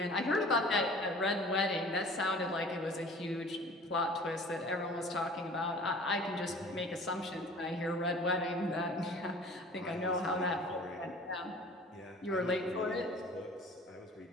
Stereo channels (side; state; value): both; normal; correlation 0.46